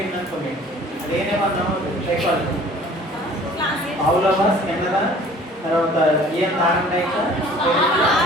అనుకోండి అదేనే మనం సైకాలజీ పావులవా స్కెన్నరా తర్వాత ఏం తాగండాయిక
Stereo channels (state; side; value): normal; both; correlation 0.50